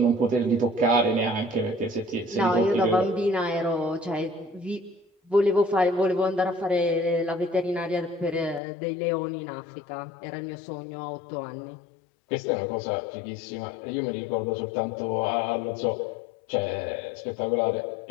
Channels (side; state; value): right; drops out; at 8.6 s